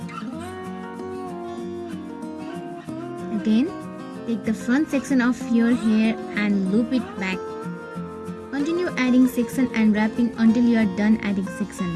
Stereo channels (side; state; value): both; identical; correlation 1.00